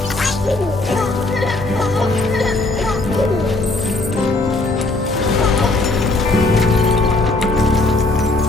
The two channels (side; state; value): right; quieter; 3.1 dB